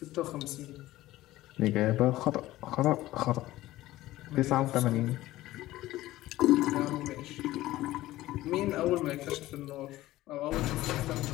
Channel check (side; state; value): right; quieter; 16.3 dB